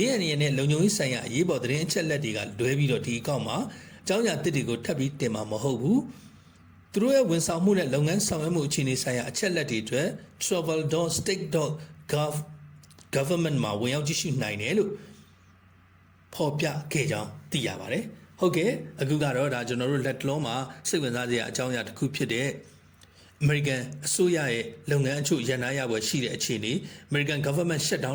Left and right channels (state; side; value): identical; both; correlation 1.00